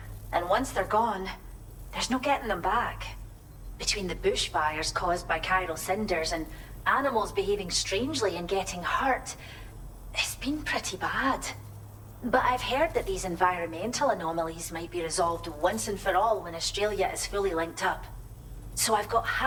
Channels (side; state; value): both; identical; correlation 1.00